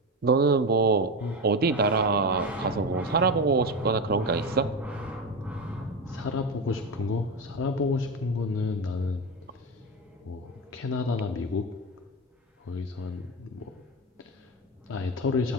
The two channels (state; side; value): normal; both; correlation 0.18